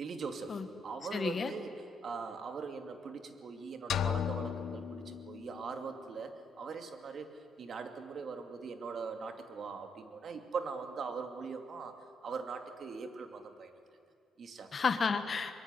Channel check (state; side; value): normal; both; correlation 0.76